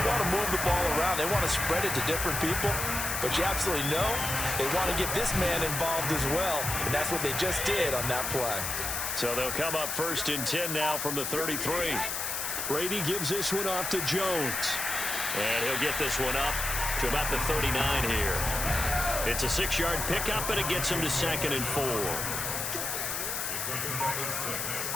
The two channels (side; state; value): left; noise; hiss, 2 dB below the sound